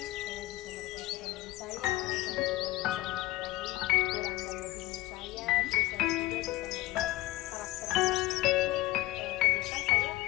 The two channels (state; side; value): quieter; right; 17.8 dB